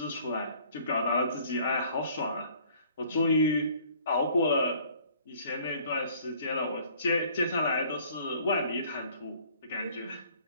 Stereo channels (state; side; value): inverted; both; correlation -0.56